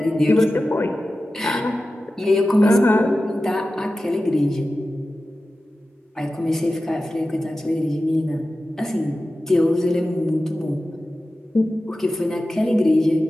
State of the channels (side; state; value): both; normal; correlation 0.94